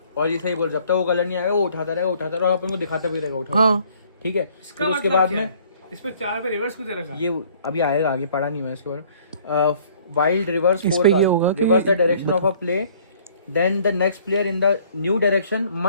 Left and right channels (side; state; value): both; inverted; correlation -0.58